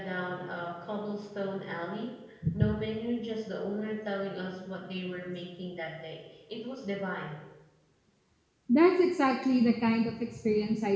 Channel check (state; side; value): identical; both; correlation 1.00